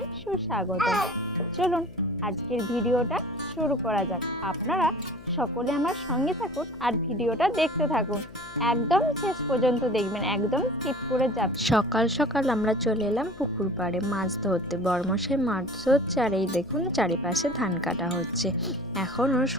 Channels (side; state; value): left; noise; hum, 20 dB below the sound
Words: সুস্বাগতম। চলুন আজকের ভিডিওটা শুরু করা যাক। আপনারা সকলে আমার সঙ্গে থাকুন আর ভিডিওটা দেখতে থাকুন। একদম শেষ পর্যন্ত দেখবেন, একদম স্কিপ করে যাবেন। সকাল সকাল আমরা চলে এলাম পুকুর পাড়ে মাছ ধরতে। বড়মশাই মাছ ধরছে আর এই দেখুন চারিপাশে ধান কাটা হচ্ছে। এখনও